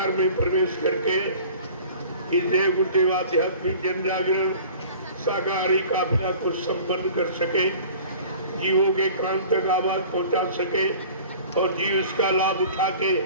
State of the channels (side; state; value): both; inverted; correlation -0.44